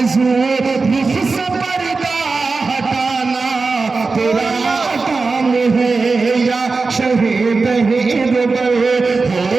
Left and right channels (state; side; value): quieter; left; 4.1 dB